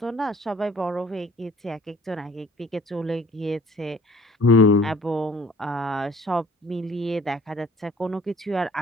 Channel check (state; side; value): normal; both; correlation 0.53